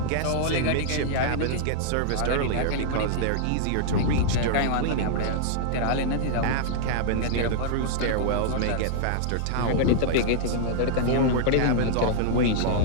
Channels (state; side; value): different; both; correlation -0.01